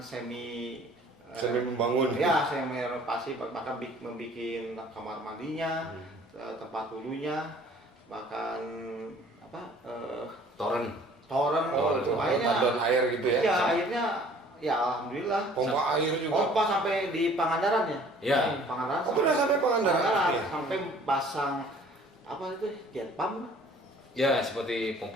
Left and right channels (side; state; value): both; normal; correlation 0.53